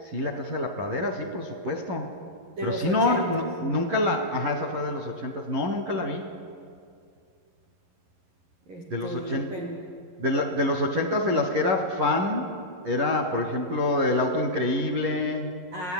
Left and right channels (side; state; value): left; late; 11 ms